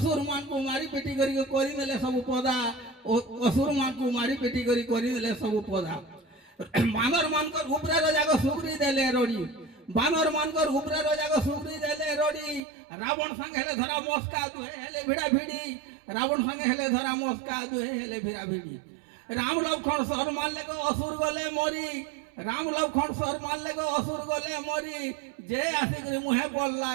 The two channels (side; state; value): left; drops out; at 12.6 s